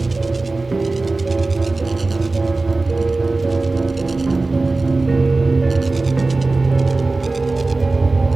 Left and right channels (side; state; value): left; quieter; 3.4 dB